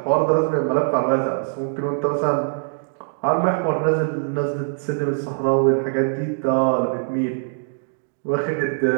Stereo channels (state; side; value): silent; left; digital silence